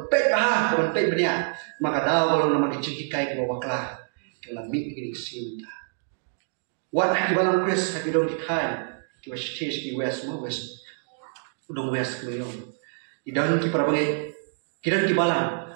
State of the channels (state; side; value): silent; left; 61 dB below the other